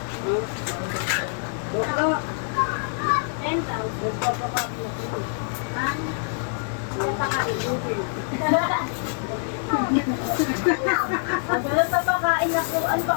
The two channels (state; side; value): silent; right; 55 dB below the other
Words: Wala pa pakain ako. Ano pa